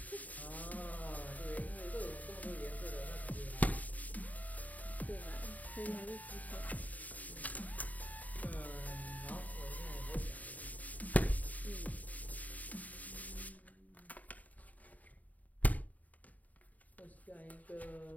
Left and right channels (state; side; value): late; right; 0.075 ms